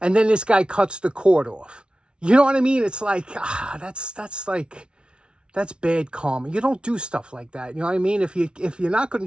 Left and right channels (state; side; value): late; left; 0.057 ms